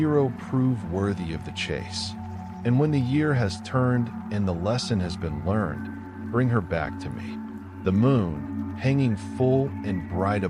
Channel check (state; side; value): identical; both; correlation 1.00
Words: prove worthy of the chase. And when the year has turned and the lesson has been learned, bring her back to me. The moon, hanging full and bright